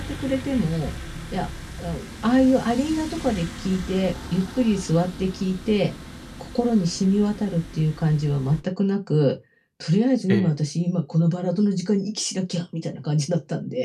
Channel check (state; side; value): identical; both; correlation 1.00